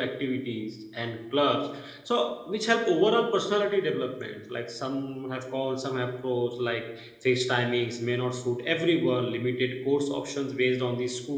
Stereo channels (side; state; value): both; identical; correlation 1.00